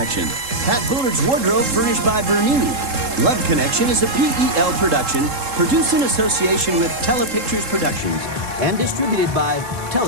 Pat Bullard's wardrobe furnished by Bernini. Love Connection is a PEL production produced in association with Telepictures Productions and distributed by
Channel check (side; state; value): left; late; 3.7 ms